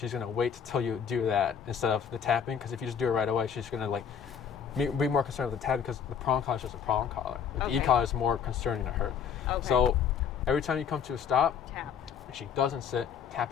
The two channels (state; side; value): quieter; right; 7.5 dB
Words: gonna wait till you do that instead of the tapping. Because if you just do it right away, she's gonna like be more concerned with the tapping because the prong collar is just a prong collar. The e-collar is more concerning to her. Okay. So every time you come to a stop, Tap. if she doesn't sit,